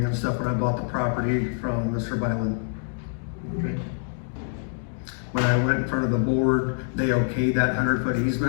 and stuff when I bought the property from Mr. Byland. Okay. When I went in front of the board, they okayed that 100-foot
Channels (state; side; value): silent; right; digital silence